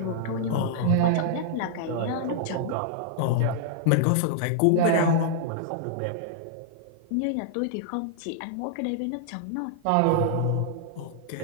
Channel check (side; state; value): both; different; correlation -0.01